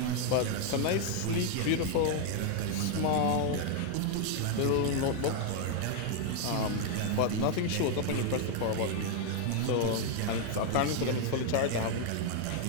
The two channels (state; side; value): different; both; correlation 0.00